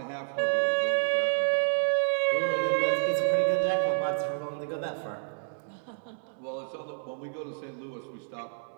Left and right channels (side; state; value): left; silent; digital silence